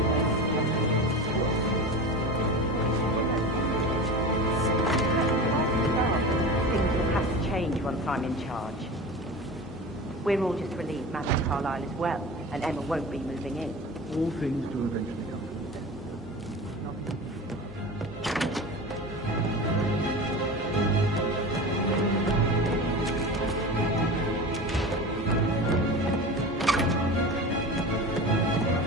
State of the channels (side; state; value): both; normal; correlation 0.31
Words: Things will have to change once I'm in charge. We're all just relieved Madame Carlisle is well, and Emma won't be moving in. All things do eventually come.